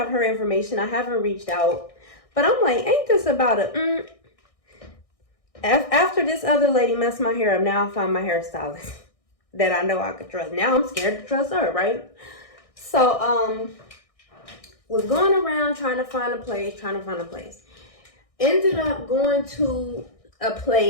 her information. I haven't reached out, but I'm like, ain't this about after this other lady messed my hair up, now I find my hairstylist that I know I could trust. Now I'm scared to trust her, right? So was going around trying to find a place. Ended up going to a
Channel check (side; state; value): right; late; 1.6 ms